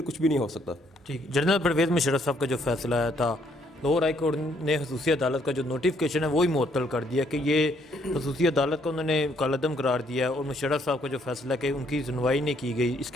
کچھ بھی نہیں ہو سکتا. ٹھیک. جنرل پرویز مشرف صاحب کا جو فیصلہ آیا تھا, لاہور ہائی کورٹ نے خصوصی عدالت کا جو نوٹیفکیشن ہے وہی معطل کر دیا کہ یہ خصوصی عدالت کا انہوں نے کالعدم قرار دیا ہے, اور مشرف صاحب کا جو فیصلہ کہ ان کی سنوائی نہیں کی گئی, اس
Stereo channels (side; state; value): both; normal; correlation 0.68